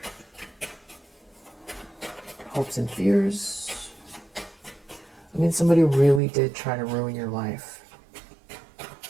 Hopes and fears. I mean, somebody really did try to ruin your life.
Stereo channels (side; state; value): left; drops out; at 6.2 s